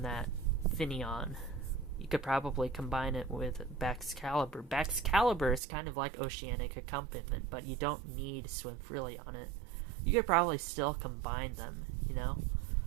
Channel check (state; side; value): drops out; left; at 5.6 s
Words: that Finneon. You could probably combine it with Baxcalibur. Baxcalibur is kind of like Oceanic Accompaniment, but you don't need Swim Freely on it. You could probably still combine them, you know?